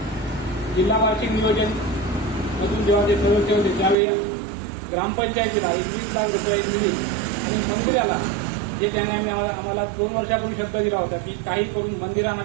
जिल्हा वार्षिक नियोजन मधून जेव्हा ते सदस्य होते त्यावेळी ग्रामपंचायतीला 21 लाख रुपये निधी आणि मंदिराला जे त्याने आम्हाला 2 वर्षापूर्वी शब्द दिला होता की काही करून मंदिरांना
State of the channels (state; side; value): drops out; left; at 4.0 s